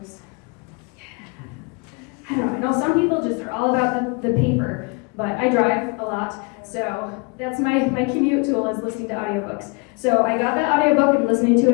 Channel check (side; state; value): right; quieter; 30.4 dB